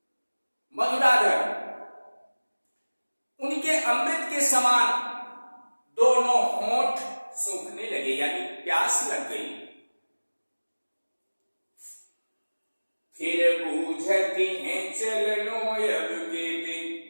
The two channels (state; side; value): inverted; both; correlation -1.00